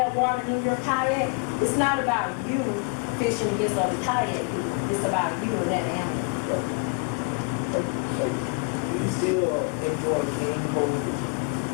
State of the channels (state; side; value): quieter; right; 33.3 dB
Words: water in your kayak, it's not about you fishing against other kayak people. It's about you and that animal. We still enjoy game pole.